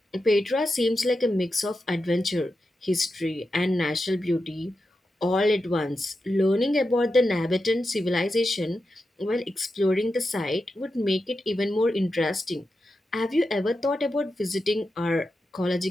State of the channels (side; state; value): both; normal; correlation 0.89